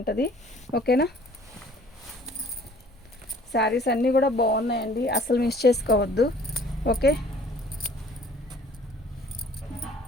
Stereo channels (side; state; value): both; normal; correlation 0.53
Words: ఓకేనా, శారీస్ అన్నీ కూడా బాగున్నాయండి, అసలు మిస్ చేసుకోవద్దు. ఓకే,